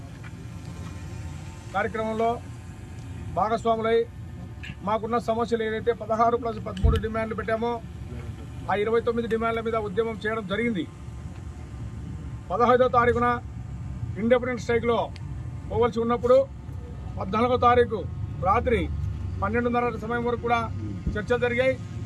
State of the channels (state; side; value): identical; both; correlation 1.00